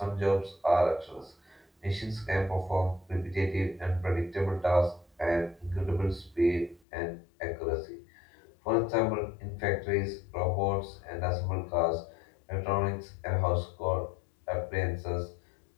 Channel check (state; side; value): drops out; right; at 6.8 s